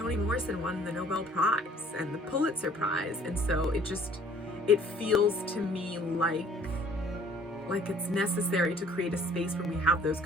Morrison won the Nobel Prize and the Pulitzer Prize, and so it feels to me like it's necessary to create a space where we have those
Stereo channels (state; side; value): normal; both; correlation 0.55